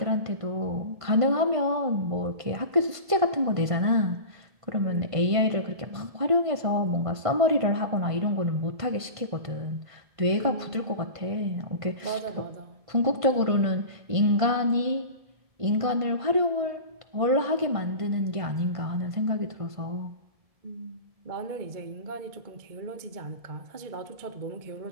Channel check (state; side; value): late; left; 1.5 ms